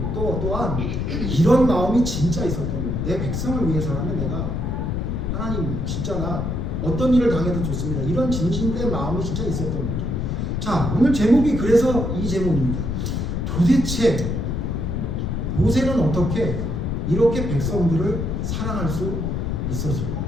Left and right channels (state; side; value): noise; left; rumble, 1 dB below the sound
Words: 또한 이런 마음이 진짜 있었던 거예요. 내 백성을 위해서라면 내가 하나님 진짜 나 어떤 일을 당해도 좋습니다. 이런 진실된 마음이 진짜 있었던 거죠. 자, 오늘 제목이 그래서 이 제목입니다. 도대체 모세는 어떻게 이렇게 백성들을 사랑할 수 있었을까?